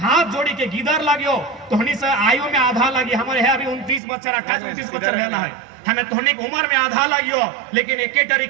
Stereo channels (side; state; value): left; drops out; at 4.0 s